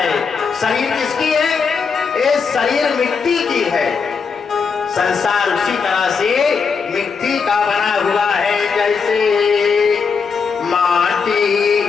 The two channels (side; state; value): right; quieter; 5.6 dB